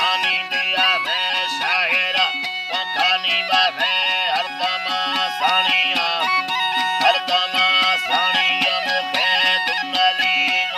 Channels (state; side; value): identical; both; correlation 1.00